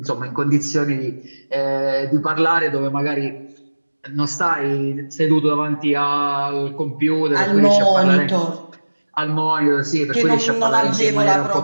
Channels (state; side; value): inverted; both; correlation -1.00